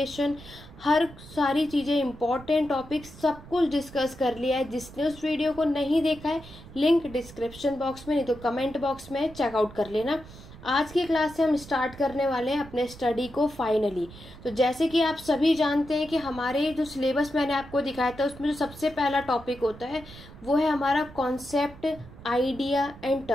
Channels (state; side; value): noise; right; rumble, 18 dB below the sound